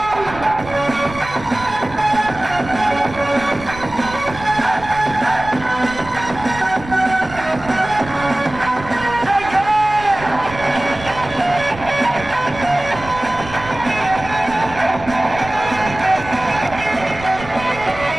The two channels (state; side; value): noise; right; rumble, 14 dB below the sound